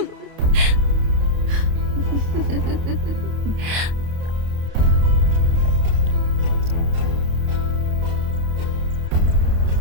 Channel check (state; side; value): late; left; 28 ms